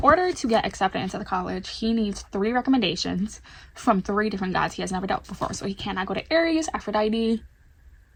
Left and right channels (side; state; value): both; identical; correlation 1.00